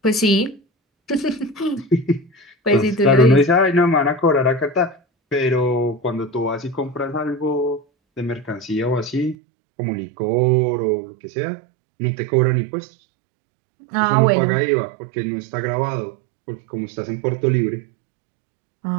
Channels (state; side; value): drops out; left; at 9.3 s